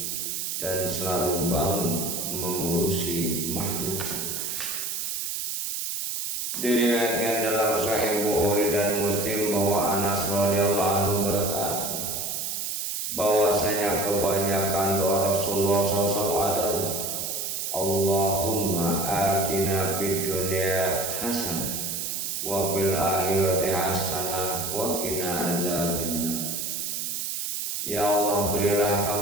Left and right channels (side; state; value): right; noise; hiss, 3 dB below the sound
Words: dan selalu bangun mengurusi makhluk. Diriwayatkan dalam Sahih Bukhari dan Muslim bahwa Anas radhiyallahu anhu berkata bahwasanya kebanyakan doa Rasulullah SAW adalah Allahumma atina fid dunya hasanah wa fil akhirati hasanah wa qina azabannar. Ya Allah, berilah